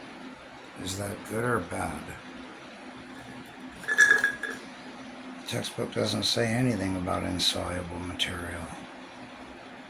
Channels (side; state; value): both; identical; correlation 1.00